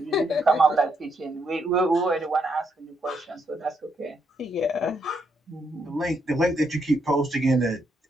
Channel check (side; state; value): both; normal; correlation 0.77